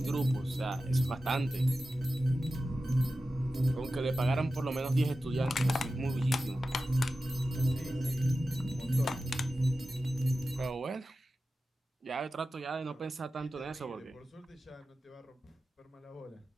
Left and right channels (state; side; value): normal; both; correlation 0.93